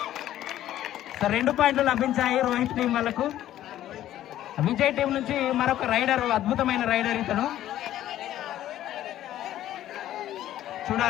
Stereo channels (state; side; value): quieter; right; 12.8 dB